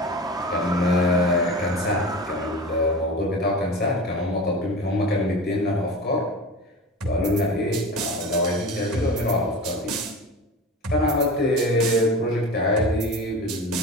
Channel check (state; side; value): normal; both; correlation 0.31